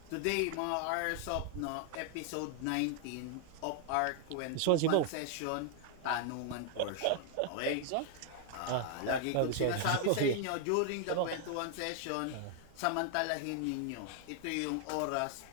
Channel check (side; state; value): both; different; correlation 0.00